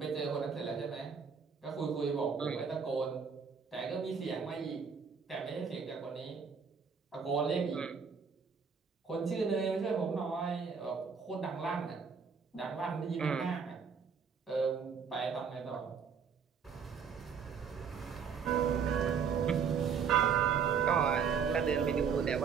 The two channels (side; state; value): left; quieter; 6.3 dB